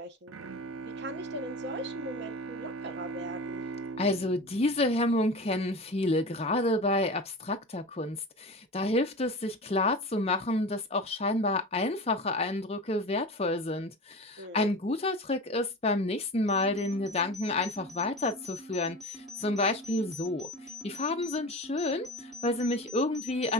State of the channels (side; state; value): both; normal; correlation 0.31